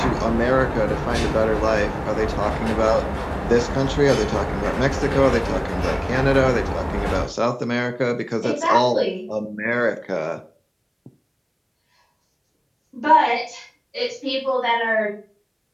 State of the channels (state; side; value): identical; both; correlation 1.00